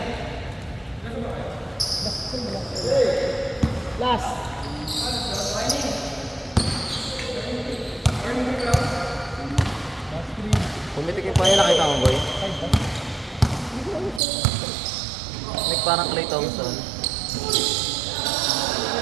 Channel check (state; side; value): drops out; left; at 14.2 s